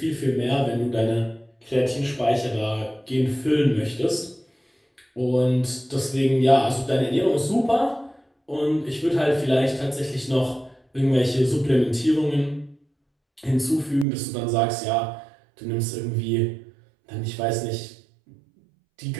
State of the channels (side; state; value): left; drops out; at 14.1 s